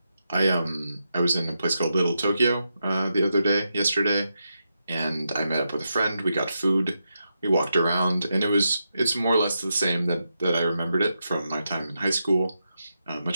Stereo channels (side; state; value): both; inverted; correlation -0.85